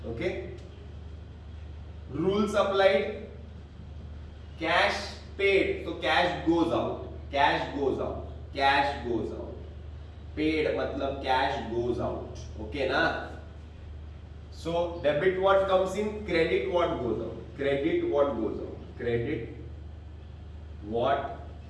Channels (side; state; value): both; identical; correlation 1.00